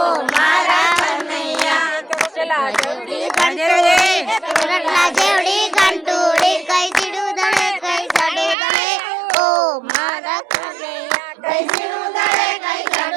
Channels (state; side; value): drops out; left; at 8.6 s